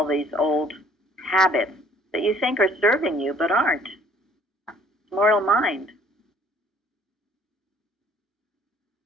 these old habits that you think are serving you but aren't. It's mortal mind.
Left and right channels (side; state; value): both; normal; correlation 0.57